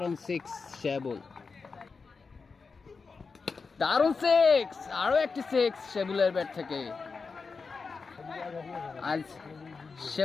সিক্স শেবুল, দারুণ সিক্স, আরো একটি সিক্স শেবুলের ব্যাট থেকে। আজ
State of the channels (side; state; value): right; quieter; 4.7 dB